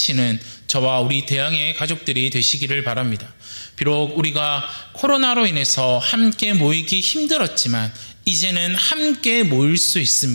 저와 우리 대양의 가족들이 되시기를 바랍니다. 비록 우리가 코로나로 인해서 함께 모이기 힘들었지만 이제는 함께 모일 수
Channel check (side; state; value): both; inverted; correlation -1.00